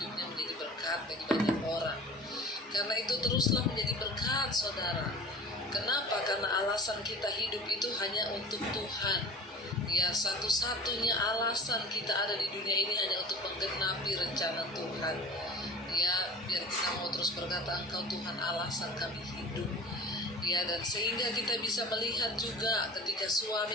menjadi berkat bagi banyak orang. Karena itu teruslah menjadi berkat, saudara. Kenapa? Karena alasan kita hidup itu hanya untuk Tuhan. Ya, satu-satunya alasan kita ada di dunia ini hanya untuk menggenapi rencana Tuhan. Ya, biar kita mau terus berkata, Engkau Tuhan alasan kami hidup. Ya, dan sehingga kita bisa melihat juga ketika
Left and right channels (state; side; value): normal; both; correlation 0.40